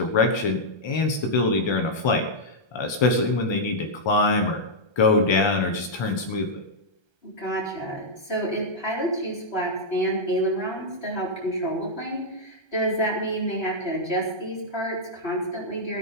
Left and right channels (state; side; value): late; right; 1.3 ms